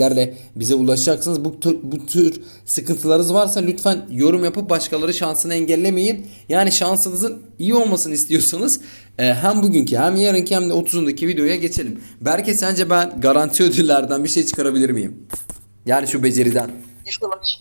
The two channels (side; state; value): both; inverted; correlation -1.00